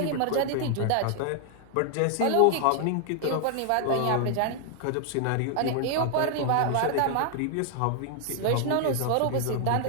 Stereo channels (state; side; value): different; both; correlation 0.00